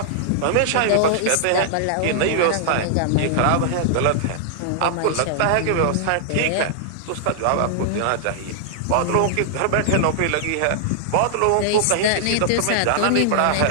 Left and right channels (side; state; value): both; different; correlation -0.01